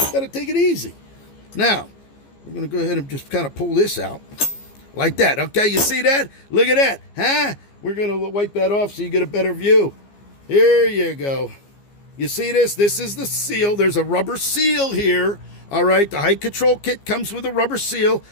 to take it easy. Now, we're going to go ahead and just kind of pull this out like that, okay? You see that? Look at that, huh? We're going to wipe that off so you get a better view. Here you go. You see this? This is the seal. There's a rubber seal here. All right, the height control kit comes with a rubber seal.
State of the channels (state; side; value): late; right; 15 ms